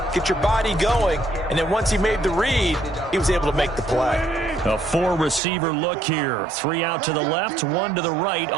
get your body going, and then once he made the read, he was able to make the play. A 4-receiver look here. 3 out to the left, 1 to the right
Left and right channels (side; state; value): left; drops out; at 5.4 s